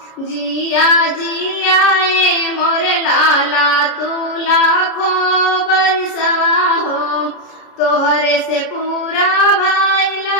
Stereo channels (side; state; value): right; late; 33 ms